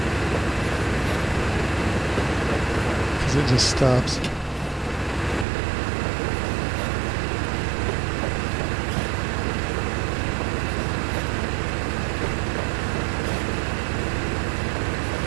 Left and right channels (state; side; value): drops out; left; at 5.5 s